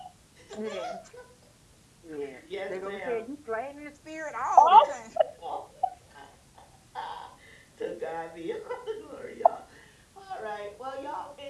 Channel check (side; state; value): both; identical; correlation 1.00